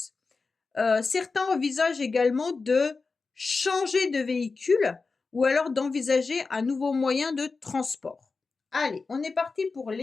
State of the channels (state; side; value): quieter; right; 4.3 dB